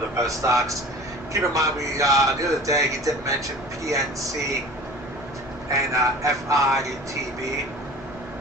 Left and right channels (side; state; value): both; normal; correlation 0.41